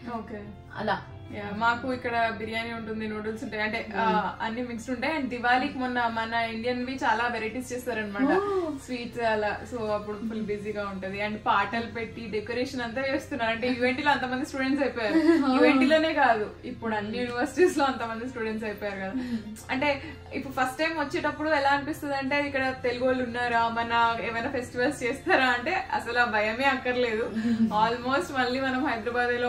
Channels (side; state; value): both; identical; correlation 1.00